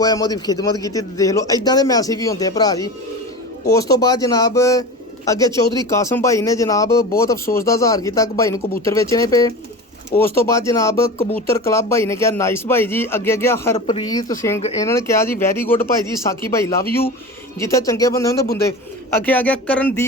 मैं खिदमत की। देख लो इदा के मैसेज भी होंगे भरा जी। उस तो बाद जनाब अगे चौधरी कासम भाई ने जनाब बहुत अफसोस का इजहार किया कि भाई कबूतर बेचने पे। उस तो बाद जनाब कबूतर क्लब भाई ने कहा नाइस भाई जी। अगे गया हरप्रीत सिंह, इन्होंने कहा जी वैरी गुड भाई जी, साकी भाई लव यू। जिथे चंगे बंदे होंगे बुंदे। अगे आ गया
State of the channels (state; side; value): normal; both; correlation 0.30